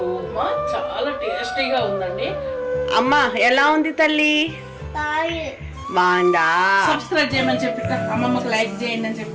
ఉప్మా చాలా టేస్టీగా ఉందండి. అమ్మా ఎలా ఉంది తల్లి? బాగుందా? సబ్స్క్రైబ్ చేయమని చెప్పి అమ్మమ్మకి లైక్ చేయండి అని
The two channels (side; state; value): both; identical; correlation 1.00